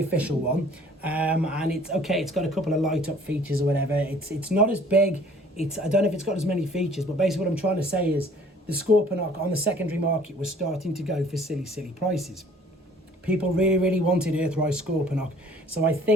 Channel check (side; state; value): both; normal; correlation 0.54